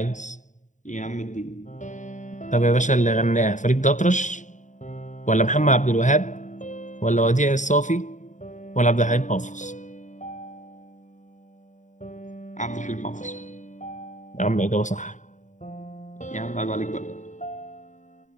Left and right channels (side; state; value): right; late; 0.36 ms